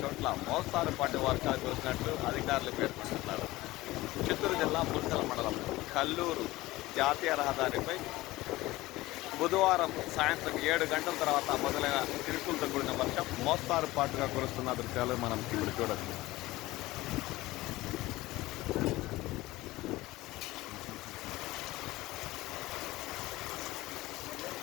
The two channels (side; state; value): right; quieter; 18.7 dB